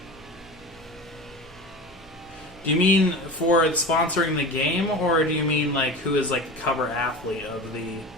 Do you mean for sponsoring the game, or do you mean like who is like the cover athlete of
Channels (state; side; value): normal; both; correlation 0.32